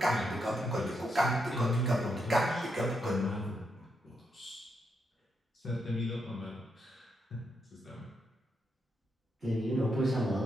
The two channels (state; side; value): normal; both; correlation 0.81